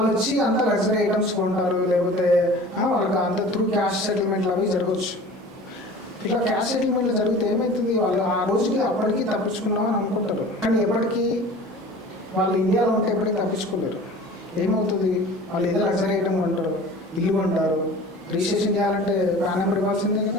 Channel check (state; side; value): normal; both; correlation 0.42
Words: వచ్చి అంత లగ్జరీ ఐటమ్స్ కొంటారు, లేకపోతే వాళ్ళకి అంత త్రూ క్యాష్ సెటిల్మెంట్లు అవి జరగవచ్చు. ఇట్లా క్యాష్ సెటిల్మెంట్లు జరిగితే ఏమవుతుంది, వాళ్ళు ఆ రోజుకి అప్పటికి తప్పించుకున్నామని అనుకుంటారు. కానీ ఎప్పటికీ వాళ్ళు ఇండియాలో ఉంటే ఎప్పటికీ తప్పించుకోలేరు. ఏమవుతుంది, వాళ్ళు ఏదో లగ్జరీ ఐటమ్ కొంటారు, ఇల్లు కొంటారు, రిజిస్ట్రేషన్ చేయాలంటే పాన్ నెంబర్ ఇవ్వాల్సిందే